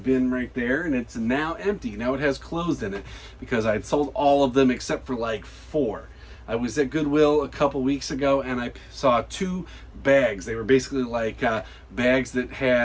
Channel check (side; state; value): both; identical; correlation 1.00